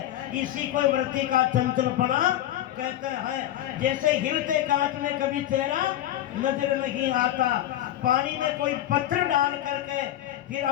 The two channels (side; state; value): right; quieter; 12.7 dB